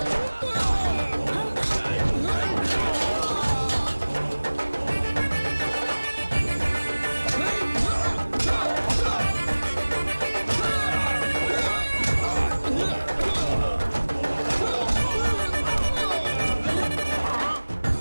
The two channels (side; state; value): both; inverted; correlation -1.00